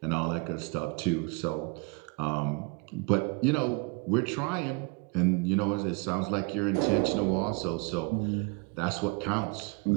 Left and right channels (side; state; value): left; quieter; 29.4 dB